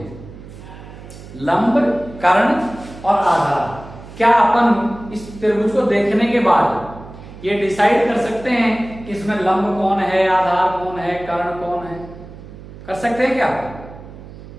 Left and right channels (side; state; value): right; noise; hum, 16 dB below the sound